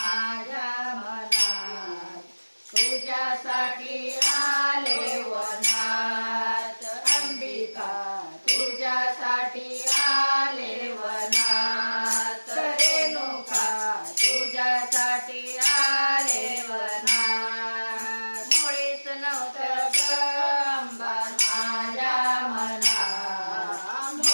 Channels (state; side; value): inverted; both; correlation -1.00